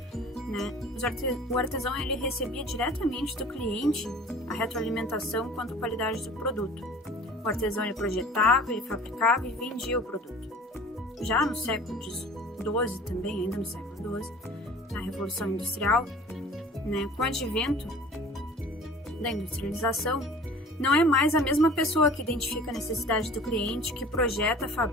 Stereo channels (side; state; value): both; normal; correlation 0.45